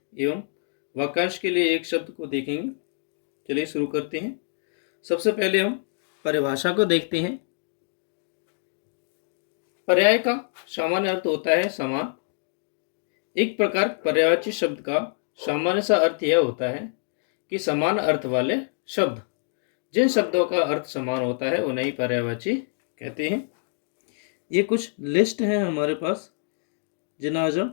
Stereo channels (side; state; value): right; silent; digital silence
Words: एवं वाक्यांश के लिए एक शब्द को देखेंगे। चलिए शुरू करते हैं। सबसे पहले हम परिभाषा को देखते हैं। पर्याय का सामान्य अर्थ होता है समान। एक प्रकार पर्यायवाची शब्द का सामान्य सा अर्थ यह होता है कि समान अर्थ वाले शब्द, जिन शब्दों का अर्थ समान होता है उन्हें ही पर्यायवाची कहते हैं। ये कुछ लिस्ट है हमारे पास, जिन्हें आज हम